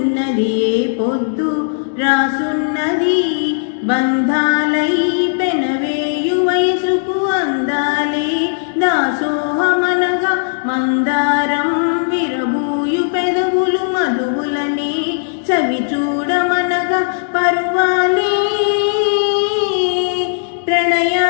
ఏ పొద్దు రాసున్నది. బంధాలై పెనవేయు వయసుకు అందాలే దాసోహమనగా, మందారం విరబూయు పెదవులు మధువులనే చవి చూడమనగా, పరువాలే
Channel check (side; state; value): right; silent; digital silence